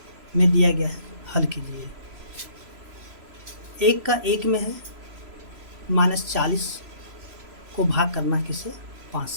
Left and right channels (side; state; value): left; late; 3.0 ms